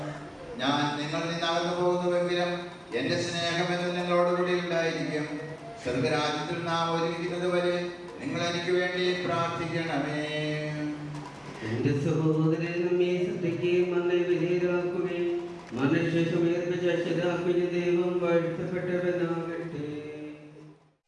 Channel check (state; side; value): identical; both; correlation 1.00